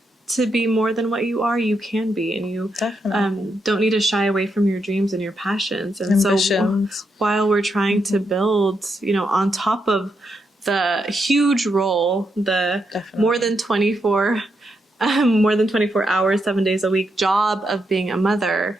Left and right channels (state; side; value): normal; both; correlation 0.82